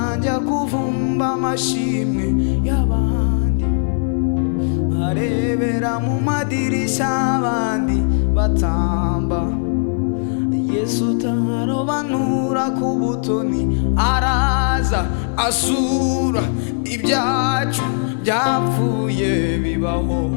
njya kuvumba amashimwe y'abandi, arebera mu madirishya abandi batamba. Yesu utarobanura ku butoni araza asura ibyacu byapfuye bibaho.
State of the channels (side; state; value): right; silent; digital silence